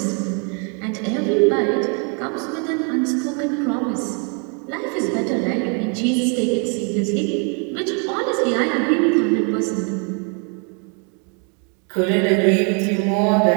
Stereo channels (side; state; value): left; quieter; 38.0 dB